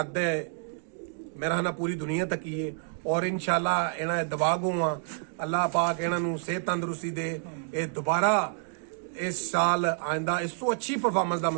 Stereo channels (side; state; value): left; silent; 59 dB below the other